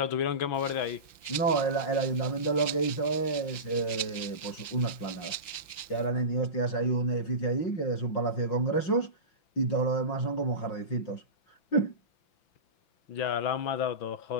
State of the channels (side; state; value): right; late; 5.9 ms